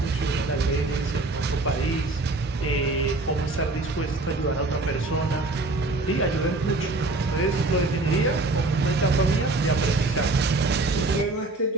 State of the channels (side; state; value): left; quieter; 3.1 dB